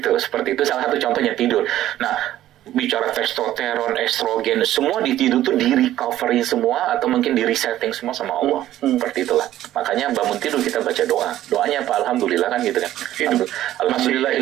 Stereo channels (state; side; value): quieter; left; 13.4 dB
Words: seperti itu salah satu contohnya tidur. Nah, bicara testosteron, estrogen, semua di tidur tuh di recovery semua atau mungkin di resetting semua sama Allah. Seperti itulah. Makanya bangun tidur kita baca doa. Doanya apa? Alhamdulillah kan gitu kan.